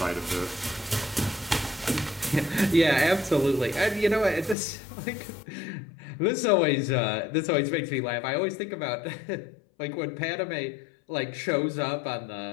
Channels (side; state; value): right; drops out; at 4.5 s